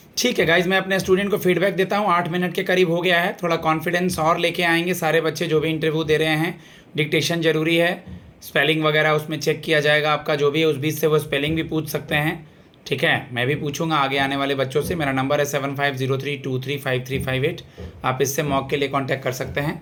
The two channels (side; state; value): both; identical; correlation 1.00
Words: ठीक है गाइज, मैं अपने स्टूडेंट को फीडबैक देता हूँ. 8 मिनट के करीब हो गया है. थोड़ा कॉन्फिडेंस और लेके आएंगे सारे बच्चे जो भी इंटरव्यू दे रहे हैं. डिक्टेशन जरूरी है, स्पेलिंग वगैरह उसमें चेक किया जाएगा आपका जो भी है. उस बीच से वो स्पेलिंग भी पूछ सकते हैं. ठीक है. मैं भी पूछूंगा आगे आने वाले बच्चों से. मेरा नंबर है 7503235358. आप इससे मॉक के लिए कांटेक्ट कर सकते हैं.